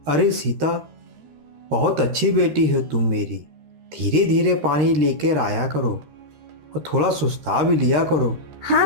अरे सीता, बहुत अच्छी बेटी हो तुम मेरी। धीरे धीरे पानी लेकर आया करो और थोड़ा सुस्ता भी लिया करो। हाँ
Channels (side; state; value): left; late; 13 ms